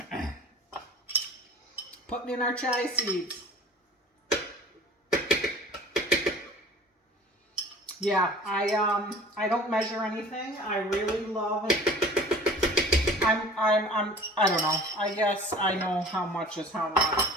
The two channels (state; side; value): normal; both; correlation 0.45